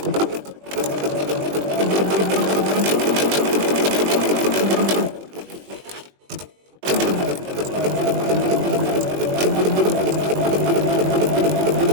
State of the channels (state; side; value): late; left; 20 ms